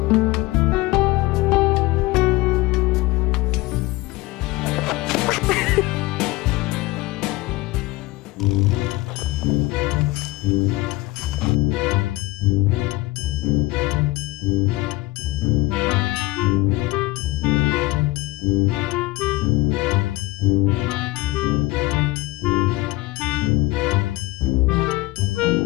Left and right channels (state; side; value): quieter; right; 19.9 dB